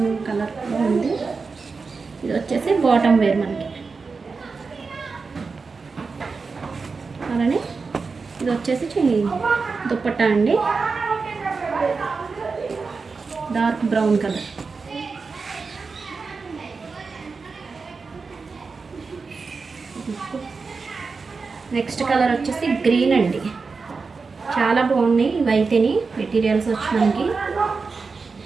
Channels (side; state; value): left; quieter; 4.6 dB